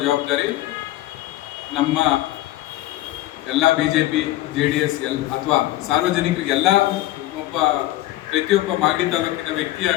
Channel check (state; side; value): quieter; right; 15.8 dB